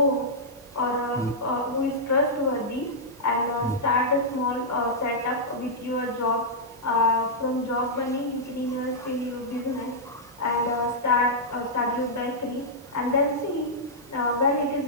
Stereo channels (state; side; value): normal; both; correlation -0.10